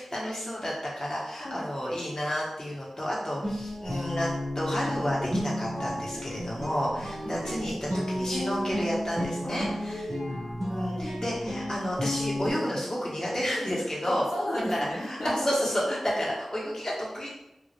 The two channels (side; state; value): both; normal; correlation 0.94